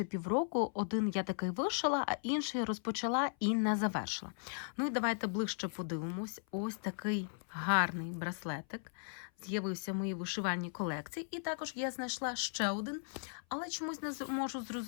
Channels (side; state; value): right; silent; 53 dB below the other